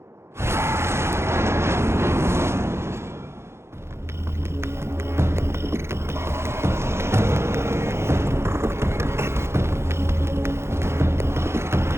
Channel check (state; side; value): late; left; 0.13 ms